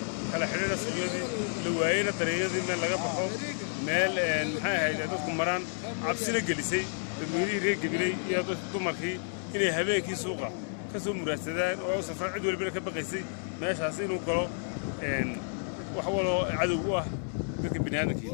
على حدانا سجودي لوعينا تريزي من لقى بحوم مال هاي هذا مران عبسنا جلسي المدير هيك قبلي يا تمرخي إني هباكي سوقه كسو مراسدان أو سفر عدو اللي بينك بقيسي ماشي حاسين وقالوا وحولوا عدو ذاك البنيان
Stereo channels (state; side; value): silent; right; digital silence